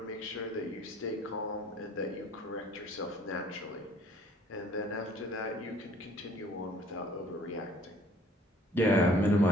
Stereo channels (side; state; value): both; normal; correlation 0.56